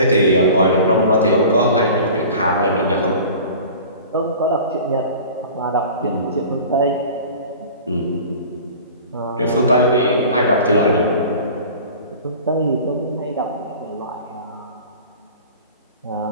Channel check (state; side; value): inverted; both; correlation -0.40